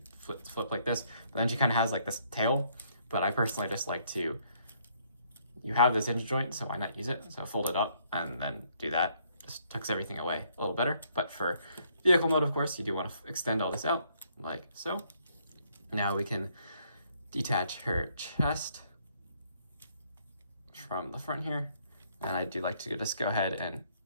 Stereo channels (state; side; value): inverted; both; correlation -0.68